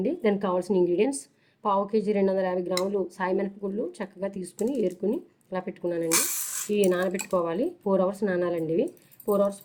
దానికి కావాల్సిన ఇంగ్రీడియంట్స్: పావు కేజీ 250 గ్రాములు సాయి మినపగుళ్ళు చక్కగా తీసుకుని ఏరుకుని ఇలా పెట్టుకున్నానండి. ఇవి నానబెట్టుకోవాలి. 4 అవర్స్ నానాలండి. ఇవి 4 అవర్స్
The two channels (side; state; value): both; identical; correlation 1.00